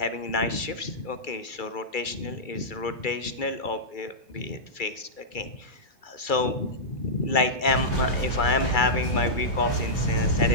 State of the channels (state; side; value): late; right; 2.3 ms